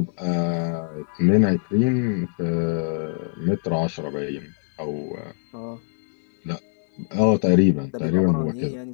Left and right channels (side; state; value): right; silent; 63 dB below the other